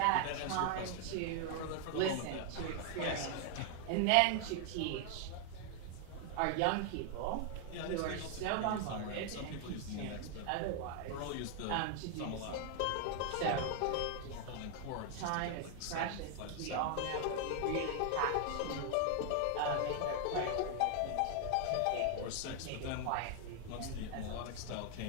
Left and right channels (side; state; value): both; different; correlation 0.00